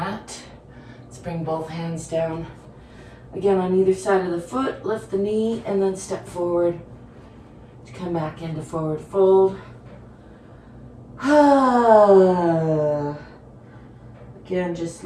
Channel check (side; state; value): both; identical; correlation 1.00